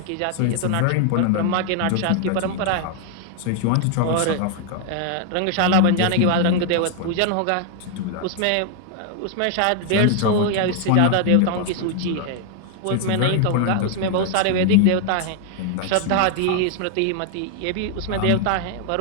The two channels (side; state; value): both; different; correlation 0.00